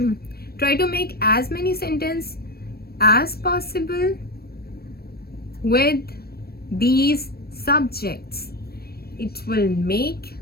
Try to make as many sentences as possible with these subjects. It will make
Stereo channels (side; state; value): right; late; 0.45 ms